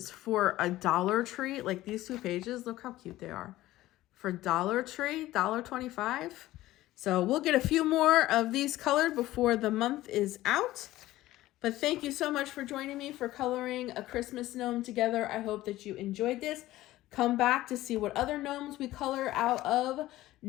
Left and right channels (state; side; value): quieter; right; 16.1 dB